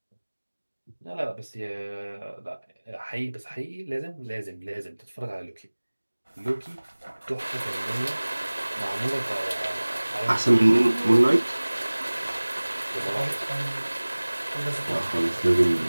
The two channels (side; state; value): both; inverted; correlation -1.00